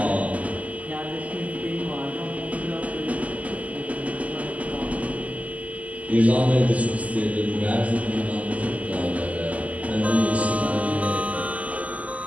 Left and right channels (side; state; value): left; late; 0.072 ms